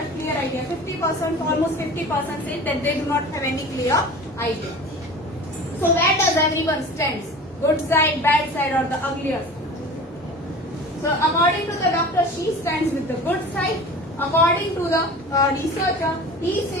clear idea. 50%, almost 50% say that they do not have any clear idea. So where does everyone stands? Good side, bad side, or the uglier side? So according to the doctor, she stands with the good side. According to the researcher, he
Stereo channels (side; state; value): both; normal; correlation 0.38